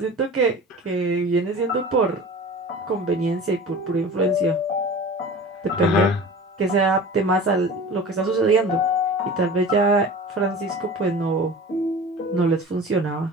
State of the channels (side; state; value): both; normal; correlation 0.37